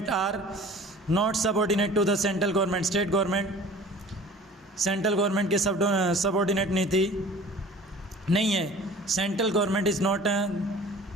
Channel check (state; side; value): normal; both; correlation 0.45